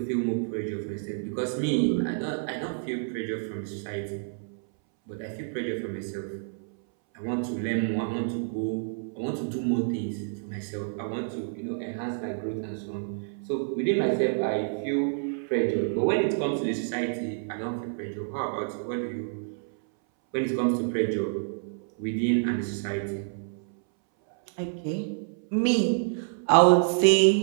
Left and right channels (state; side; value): silent; left; 59 dB below the other